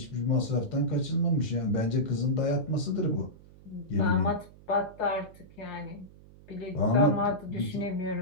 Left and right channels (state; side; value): noise; right; hum, 22 dB below the sound